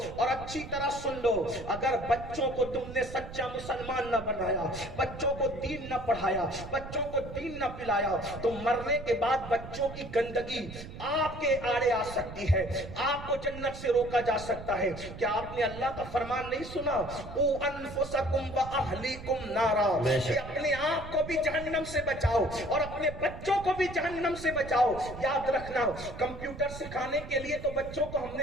اور اچھی طرح سن لو، اگر بچوں کو تم نے سچا مسلمان نہ بنایا، بچوں کو دین نہ پڑھایا، بچوں کو دین نہ پلایا، تو مرنے کے بعد بچوں کی گندگی آپ کے آڑے آ سکتی ہے، آپ کو جنت سے روکا جا سکتا ہے۔ کیا آپ نے اللہ کا فرمان نہیں سنا؟ او انفسکم و اہلیکم نارا، کہ اپنے آپ کو بھی جہنم سے بچاؤ اور اپنے بچوں کو بھی جہنم سے بچاؤ۔ یاد رکھنا، کمپیوٹر سکھانے کے لیے تو بچوں کو ہم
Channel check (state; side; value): noise; right; rumble, 12 dB below the sound